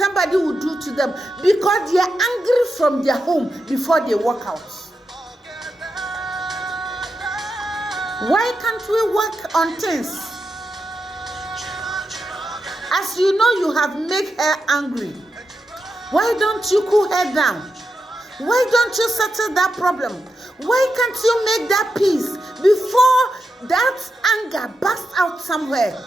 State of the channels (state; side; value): normal; both; correlation 0.87